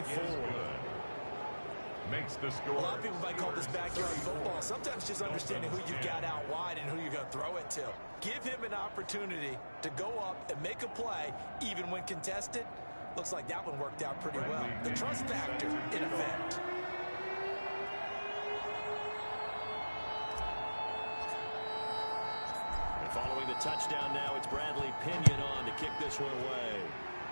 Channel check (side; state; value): both; inverted; correlation -1.00